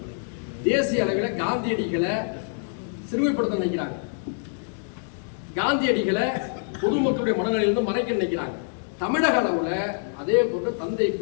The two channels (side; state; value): right; silent; digital silence